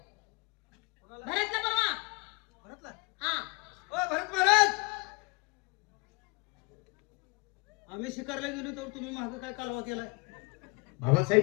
भरतला बोलवा. भरतला. हा. ओ भरत महाराज, आम्ही शिकारला गेलो तर तुम्ही मागं काय कालवा केलाय? बाबासाहेब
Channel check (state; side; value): quieter; right; 28.7 dB